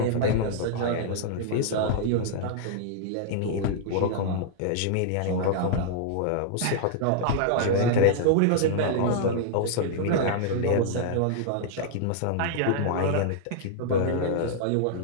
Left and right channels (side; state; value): both; different; correlation -0.01